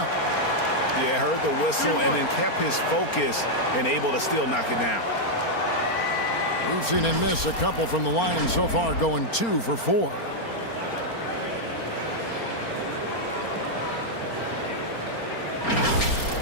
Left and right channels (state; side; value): late; right; 4.3 ms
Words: Yeah, heard the whistle and then kept his focus and able to still knock it down. We've seen him miss a couple from the line so far, going 2 for 4.